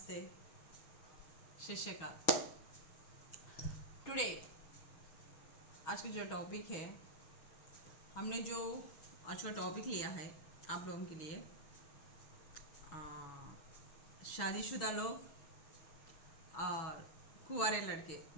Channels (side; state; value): right; late; 6.4 ms